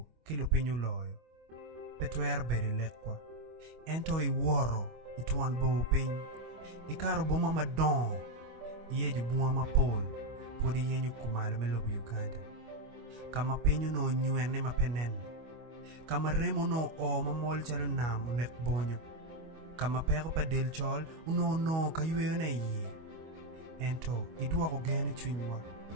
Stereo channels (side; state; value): left; late; 25 ms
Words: ki lupinyo loyo. Petwer bede lekwa. Ento I woro, ituan bo piny. Ikaro boma madon. Iyeju bunga mapol, podi yenyu kumalo me lobu Uganda. Kama penyo no nyuene mapenene. Kama remo no o mamol chalo nam unek bonyo. Kama pero pa del chol uno ka yueyo na iye. Ento, idua ko gene chwinywa.